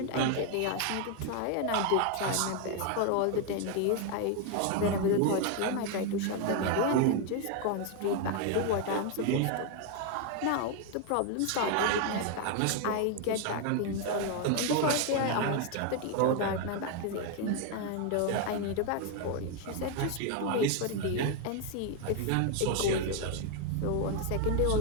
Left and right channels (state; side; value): different; both; correlation 0.01